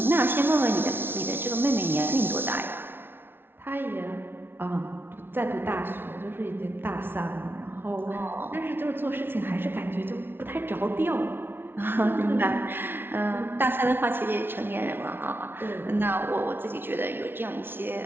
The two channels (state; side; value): late; left; 0.11 ms